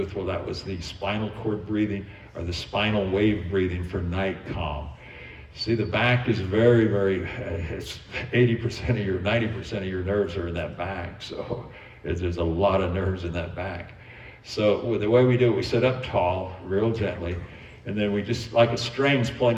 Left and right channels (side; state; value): both; identical; correlation 1.00